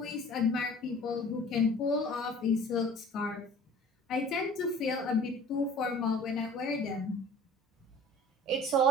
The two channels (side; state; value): both; normal; correlation 0.47